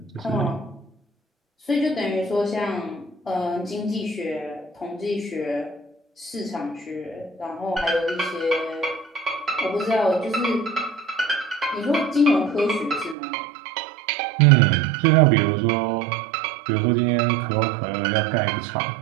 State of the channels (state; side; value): drops out; left; at 13.2 s